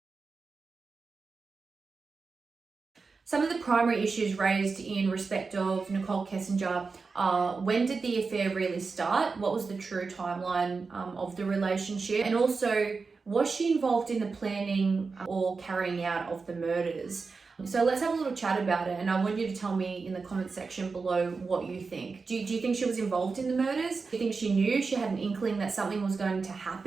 Some of the primary issues raised in respect of Nichol Kessinger are when did the affair really start? What was the true timeline of the relationship? And also, was she involved in the planning or carrying out of the murders? So let's have a little chat about it, and I want you to tell me in the comment section below what you think. Do you think she was involved in the murders? Do you think she knew, she had an inkling that something was going to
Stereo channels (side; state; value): left; quieter; 4.5 dB